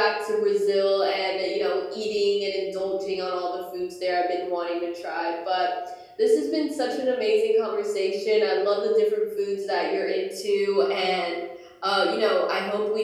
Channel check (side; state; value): both; identical; correlation 1.00